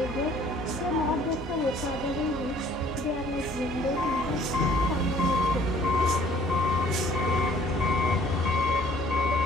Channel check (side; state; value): both; normal; correlation 0.56